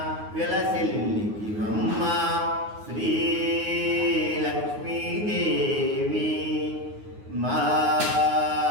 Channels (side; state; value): left; late; 9.5 ms